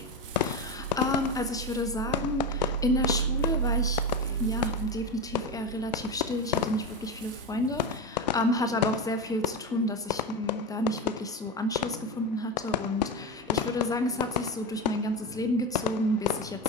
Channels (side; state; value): both; normal; correlation 0.19